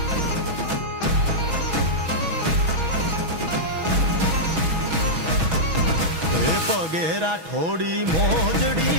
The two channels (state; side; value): late; left; 6.2 ms